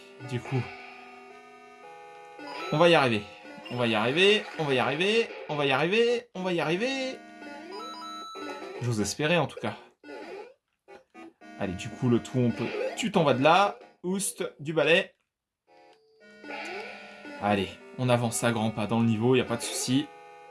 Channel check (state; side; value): identical; both; correlation 1.00